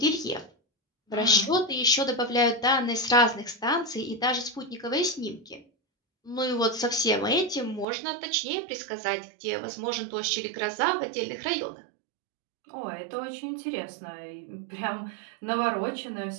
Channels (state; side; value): drops out; left; at 7.9 s